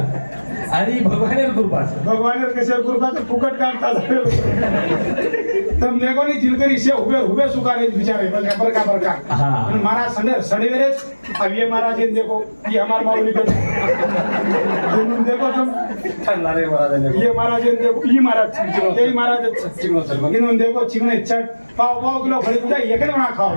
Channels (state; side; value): inverted; both; correlation -1.00